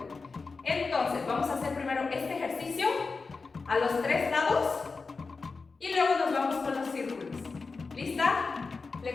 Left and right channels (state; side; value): quieter; right; 4.3 dB